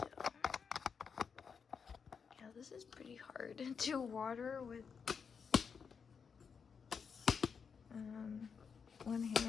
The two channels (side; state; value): right; quieter; 6.1 dB